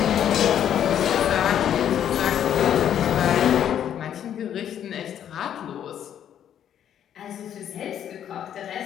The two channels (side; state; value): right; quieter; 9.8 dB